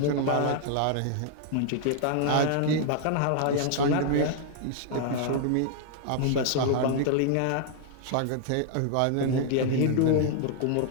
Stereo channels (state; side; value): different; both; correlation 0.00